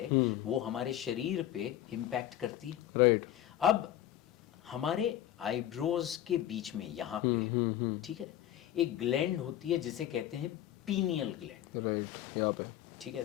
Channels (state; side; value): quieter; right; 12.3 dB